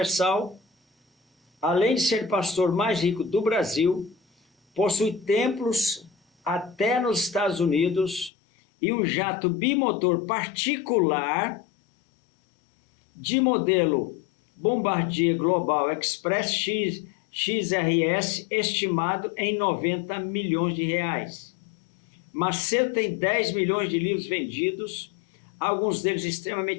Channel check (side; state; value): right; drops out; at 8.3 s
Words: além de ser pastor mais rico do Brasil, possui templos até nos Estados Unidos e um jato bimotor particular de modelo Bombardier Global Express XRS, estimado em 90 milhões de reais. Macedo tem 10 milhões de livros vendidos, alguns deles